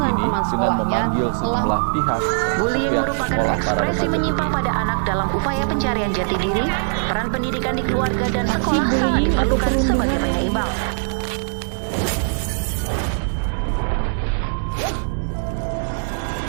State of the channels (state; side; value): silent; left; digital silence